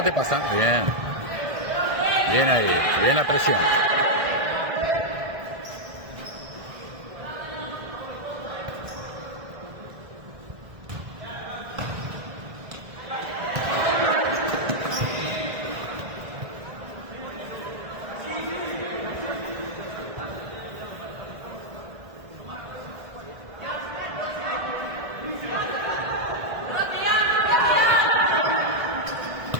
te pasa. Bien. Bien ahí, bien la presión.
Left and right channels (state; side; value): late; left; 1.6 ms